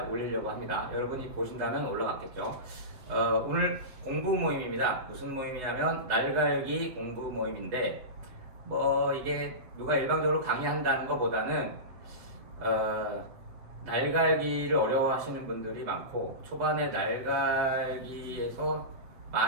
올리려고 합니다. 여러분이 보신다면 올라갔겠죠. 오늘 공부 모임입니다. 무슨 모임이냐면 날갈기 공부 모임인데, 뭐 이게 누가 일방적으로 강의한다는 것보다는 날갈기를 어려워하시는 분들이 많고 초반에 날갈기에서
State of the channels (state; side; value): late; left; 8.0 ms